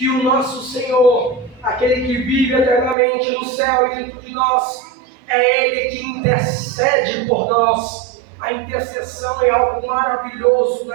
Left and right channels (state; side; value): drops out; left; at 3.0 s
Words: o nosso Senhor, aquele que vive eternamente no céu e dentro de nós, é Ele que intercede por nós. A intercessão é algo maravilhoso